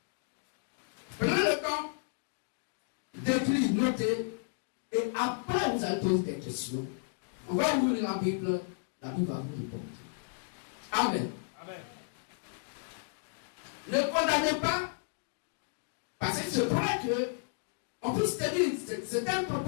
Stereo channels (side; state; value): right; silent; digital silence